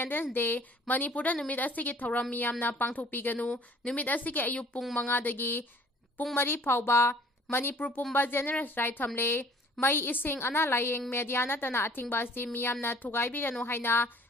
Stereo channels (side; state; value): both; normal; correlation 0.53